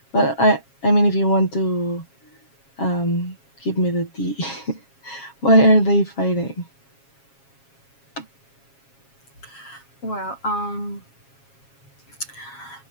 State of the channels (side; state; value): right; late; 7.3 ms